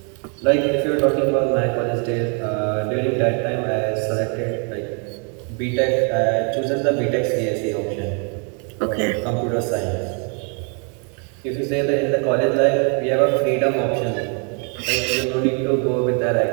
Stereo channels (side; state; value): left; quieter; 38.1 dB